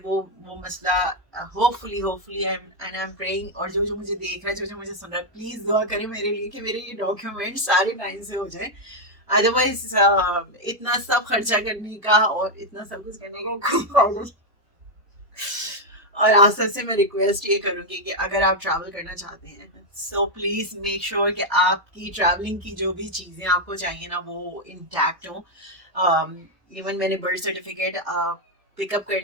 मसला, hopefully hopefully I am praying. और जो जो मुझे देख रहा है, जो जो मुझे सुन रहा है, प्लीज दुआ करें मेरे लिए कि मेरे ये डॉक्यूमेंट सारे टाइम से हो जाए। अदरवाइज इतना सब खर्चा करने का और इतना सब कुछ करने का कोई फायदा। और आज सबसे मैं रिक्वेस्ट ये करूंगी कि अगर आप ट्रैवल करना चाहते हैं, सो प्लीज मेक श्योर कि आपकी ट्रैवलिंग की जो भी चीजें आपको चाहिए ना वो इंटैक्ट हो। इवन मैंने बर्थ सर्टिफिकेट पिकअप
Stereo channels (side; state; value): left; late; 2.0 ms